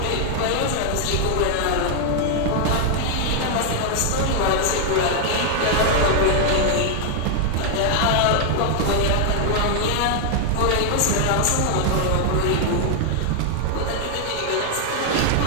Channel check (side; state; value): both; different; correlation 0.00